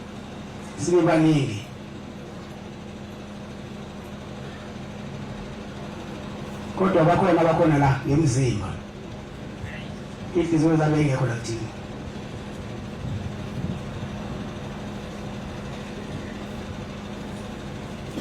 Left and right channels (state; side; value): identical; both; correlation 1.00